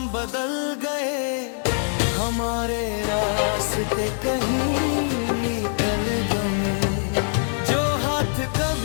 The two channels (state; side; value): silent; right; digital silence